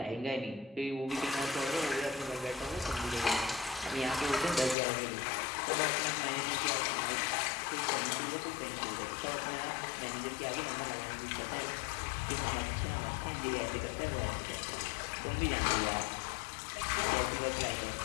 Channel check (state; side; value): drops out; right; at 4.8 s